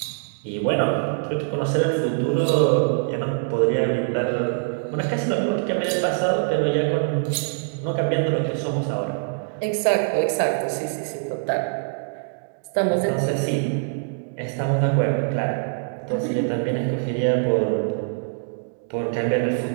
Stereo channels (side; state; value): left; silent; digital silence